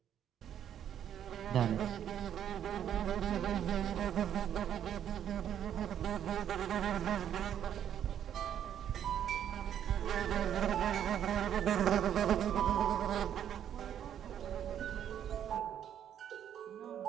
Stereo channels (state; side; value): quieter; left; 9.7 dB